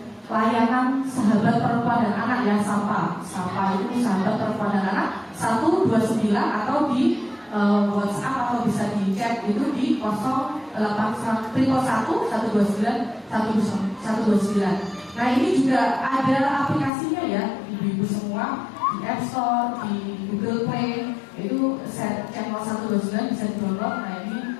layanan sahabat perempuan dan anak yang SAPA itu sahabat perempuan dan anak 129 atau di WhatsApp atau bisa di chat itu di 0811 129 129. Nah ini juga ada aplikasinya ya, ibu-ibu semua di App Store, di Google Play, itu channel 129 bisa di-download. Nah ini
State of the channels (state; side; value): drops out; right; at 16.9 s